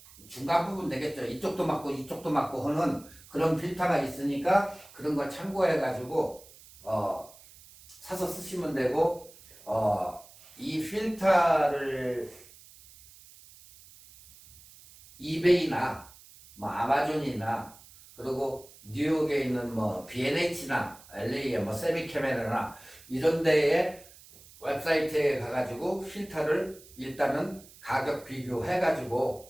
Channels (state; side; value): noise; right; hiss, 22 dB below the sound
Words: 중간 부분 되겠죠. 이쪽도 맞고 이쪽도 맞고 하는 그런 필터가 있으니까 그런 걸 참고해가지고 사서 쓰시면 되고 이 필터를 이베이나 뭐 아마존이나 그리고 뉴욕에 있는 뭐 B&H나 LA의 뭐 세미캐메라나 이런 데에 웹사이트에 가가지고 필터를 일단은 가격